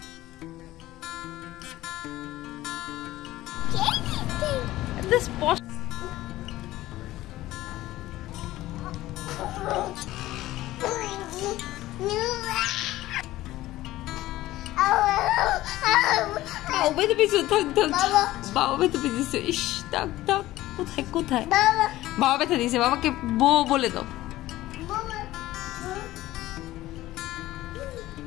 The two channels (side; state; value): right; quieter; 16.2 dB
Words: this posh বাবা তো পিছু থাক থাক বাবা তো পিছু ইস থাক থাক কোথায় কোথায় বাবা ব্যথা দিয়েছে বাবাকে বউ বলে দাও